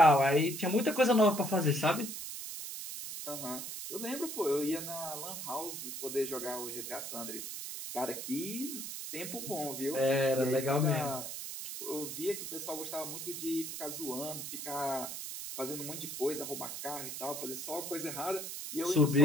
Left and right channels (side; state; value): right; noise; hiss, 6 dB below the sound